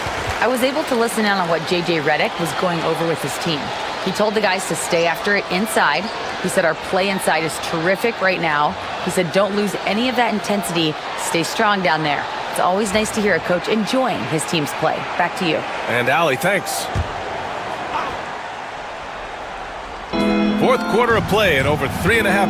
I was able to listen in on what J.J. Redick was going over with his team. He told the guys to stay after it inside. He said our play inside is terrific right now. He said don't lose any of that intensity. Stay strong down there. It's always nice to hear a coach enjoying his team's play. Back to you. And Allie, thanks. Fourth quarter of play, and over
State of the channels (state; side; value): identical; both; correlation 1.00